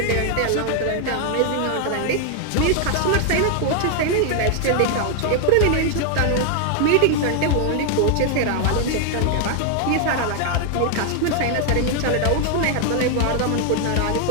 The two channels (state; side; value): different; both; correlation 0.00